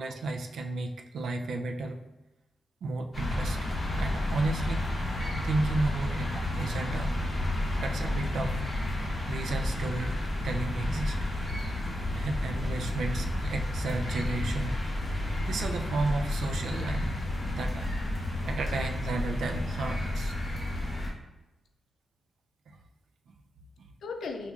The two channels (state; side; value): normal; both; correlation 0.87